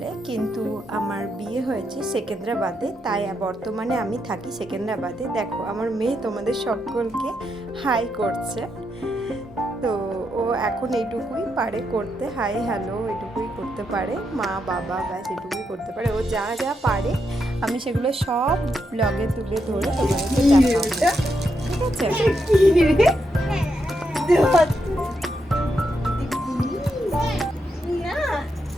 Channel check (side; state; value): both; normal; correlation 0.82